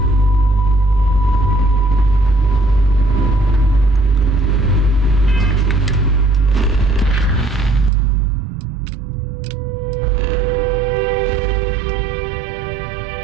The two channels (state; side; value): drops out; left; at 7.9 s